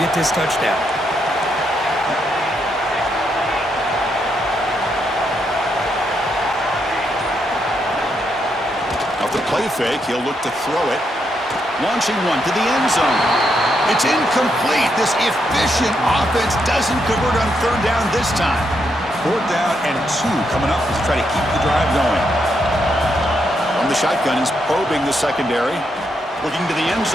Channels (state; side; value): normal; both; correlation 0.79